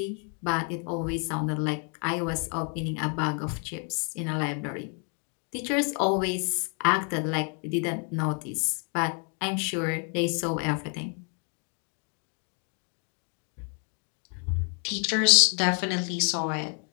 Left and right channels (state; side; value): quieter; right; 39.5 dB